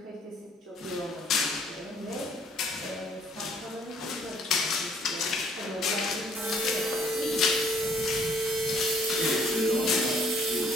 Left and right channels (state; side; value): normal; both; correlation 0.62